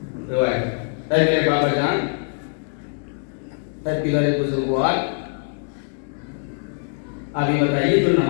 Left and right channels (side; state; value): right; silent; digital silence